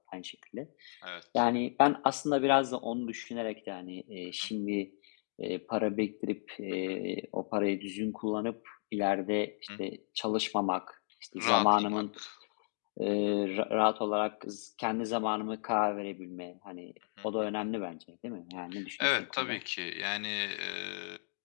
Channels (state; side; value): silent; right; digital silence